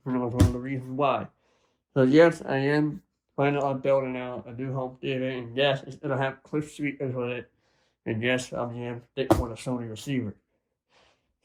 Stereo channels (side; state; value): both; identical; correlation 1.00